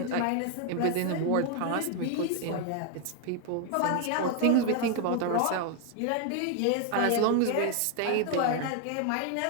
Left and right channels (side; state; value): both; different; correlation 0.00